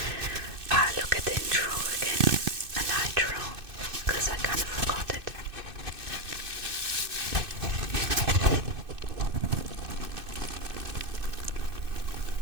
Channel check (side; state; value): left; late; 2.6 ms